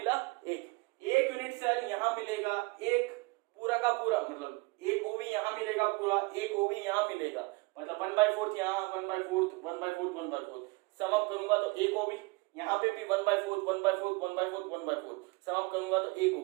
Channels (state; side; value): quieter; left; 26.0 dB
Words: 1। एक यूनिट सेल यहाँ मिलेगा, एक पूरा का पूरा, मतलब एक ओवी यहाँ मिलेगा पूरा, एक ओवी यहाँ मिलेगा, मतलब 1/4 यहाँ, 1/4, 1/4, 1/4। सम अप करूंगा तो एक ओवी, यहाँ पे भी 1/4, 1/4, 1/4, 1/4। सम अप करूंगा तो एक